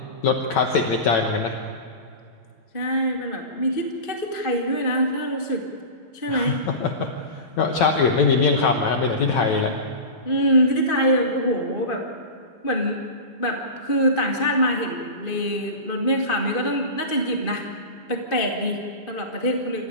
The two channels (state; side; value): late; right; 2.5 ms